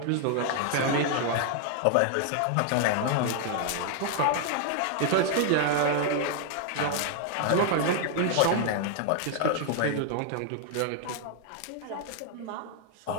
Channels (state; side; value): different; both; correlation 0.00